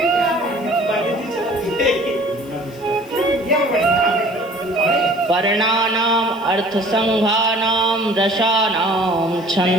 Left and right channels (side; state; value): left; noise; hiss, 26 dB below the sound